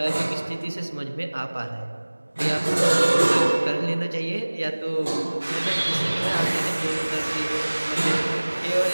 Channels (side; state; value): both; inverted; correlation -1.00